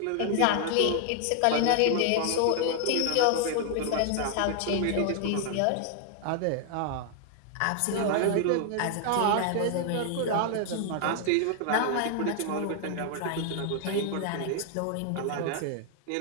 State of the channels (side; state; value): both; different; correlation 0.00